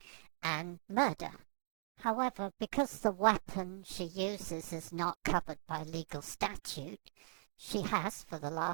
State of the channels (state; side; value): silent; left; digital silence